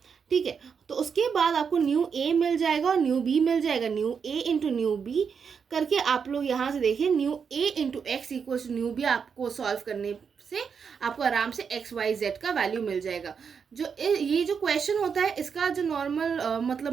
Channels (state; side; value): quieter; left; 6.4 dB